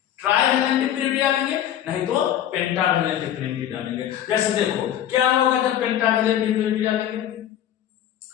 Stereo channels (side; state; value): right; quieter; 11.0 dB